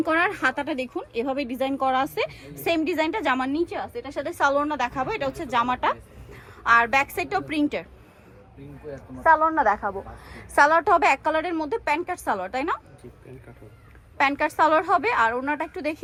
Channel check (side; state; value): both; identical; correlation 1.00